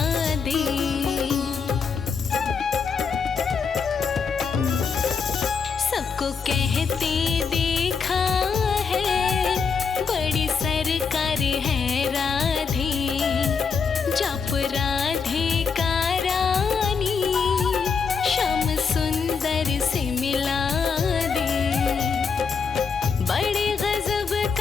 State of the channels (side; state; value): right; quieter; 5.7 dB